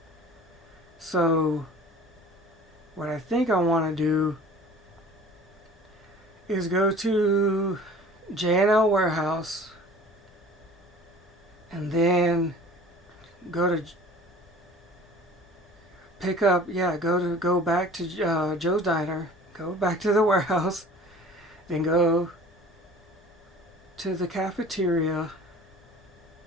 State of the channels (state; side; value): normal; both; correlation 0.46